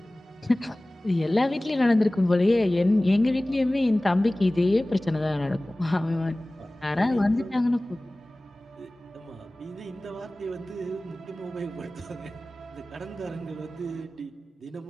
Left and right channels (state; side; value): normal; both; correlation 0.98